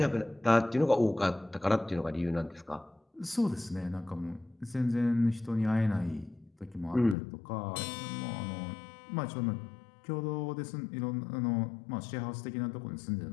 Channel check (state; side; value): drops out; right; at 7.2 s